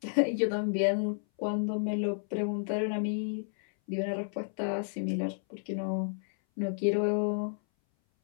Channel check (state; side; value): silent; right; 57 dB below the other